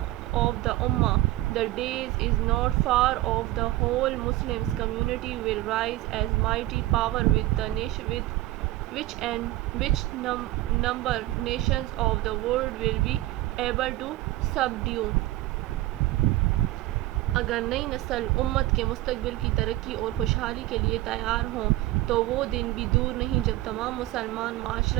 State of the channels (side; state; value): left; quieter; 16.9 dB